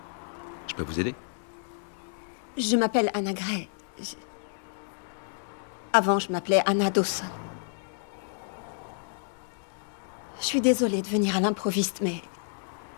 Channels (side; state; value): right; silent; digital silence